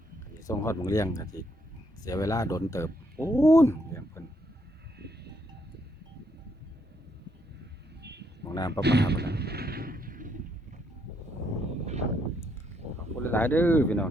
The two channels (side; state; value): both; normal; correlation 0.73